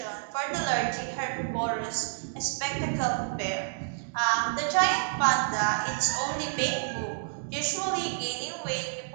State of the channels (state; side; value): silent; left; digital silence